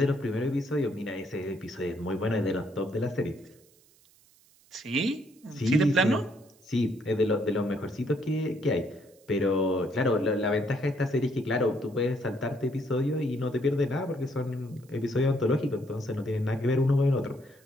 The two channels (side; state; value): right; noise; hiss, 30 dB below the sound